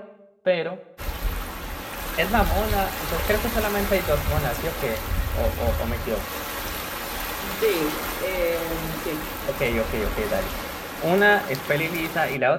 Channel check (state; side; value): identical; both; correlation 1.00